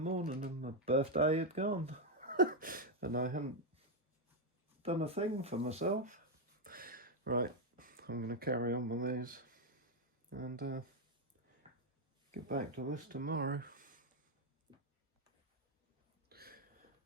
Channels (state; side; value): normal; both; correlation 0.02